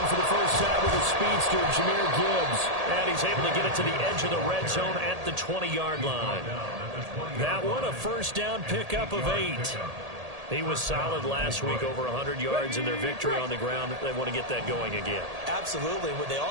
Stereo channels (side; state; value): left; late; 1.8 ms